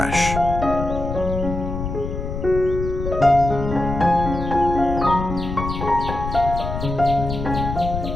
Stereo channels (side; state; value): left; noise; rumble, 5 dB below the sound